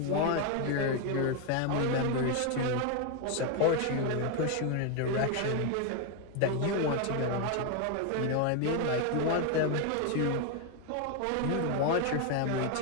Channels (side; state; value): both; different; correlation 0.01